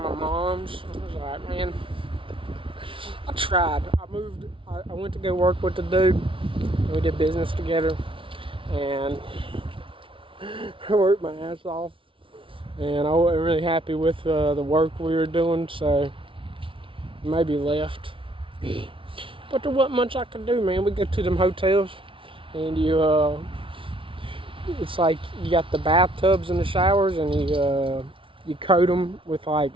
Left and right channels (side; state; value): left; late; 0.25 ms